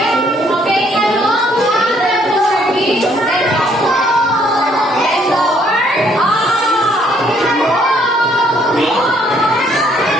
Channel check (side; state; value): both; normal; correlation 0.66